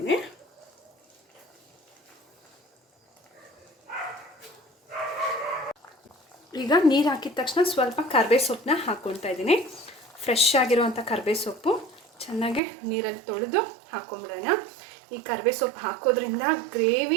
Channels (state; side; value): drops out; left; at 12.6 s